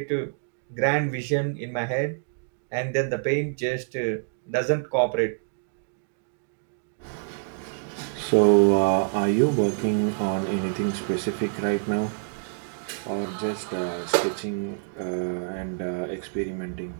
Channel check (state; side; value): silent; left; digital silence